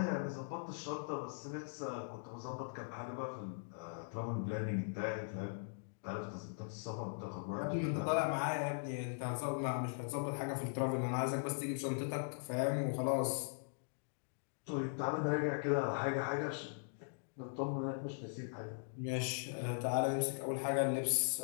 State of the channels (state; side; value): silent; right; digital silence